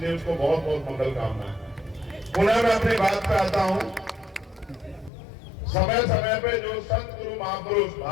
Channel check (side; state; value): right; drops out; at 5.1 s